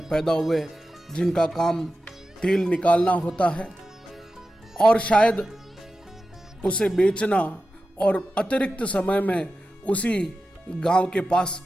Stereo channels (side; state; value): both; normal; correlation 0.93